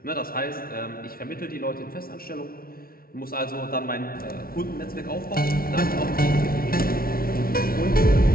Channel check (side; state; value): right; late; 0.43 ms